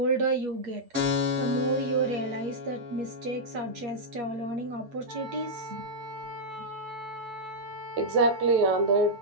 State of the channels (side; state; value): left; late; 8.5 ms